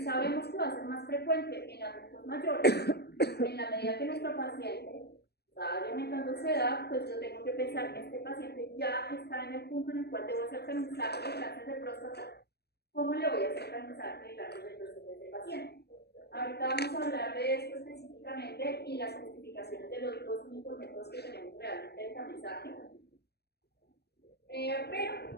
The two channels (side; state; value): right; late; 0.48 ms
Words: que va a ser más frecuente en adultos mayores, en la medida que nuestro paciente va aumentando su edad, pues yo tengo que pensar que este paciente ya está en el punto en el cual debo hacer tamizaje de cáncer de próstata. ¿Cómo le voy a hacer tamizaje de cáncer de próstata a este paciente? Ahorita vamos a hablar de esto específicamente y las justificaciones de los dos únicos métodos que tenemos realmente de tamizaje. Pero